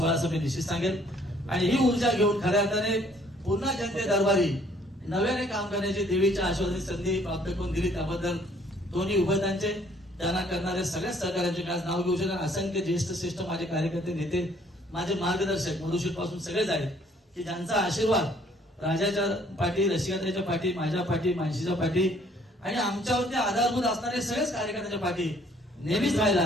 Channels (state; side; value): normal; both; correlation 0.61